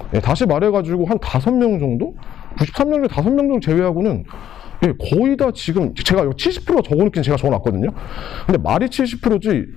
네, 다시 말해가지고 한 5명 정도? 93명 중에 5명 정도 제외하고는 거의 다 지금 제가 70%가 적어놓긴 제가 적어놨거든요. 근데 말이 70%지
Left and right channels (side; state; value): right; quieter; 10.7 dB